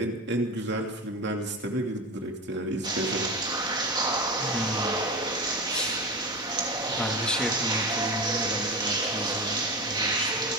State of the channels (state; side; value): normal; both; correlation 0.24